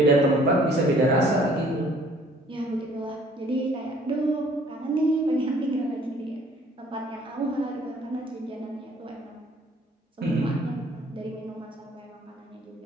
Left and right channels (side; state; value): both; normal; correlation 0.57